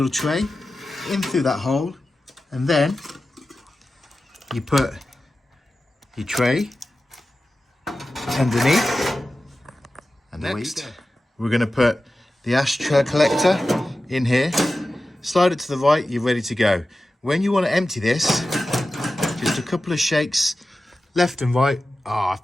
tray, in through that hole, and then you put your tray underneath. And next, we're going to put the ashtray collector in here. Slide it to the right, you're ready to go. When you want to empty this, just a couple of shakes left and right.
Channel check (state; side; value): normal; both; correlation 0.94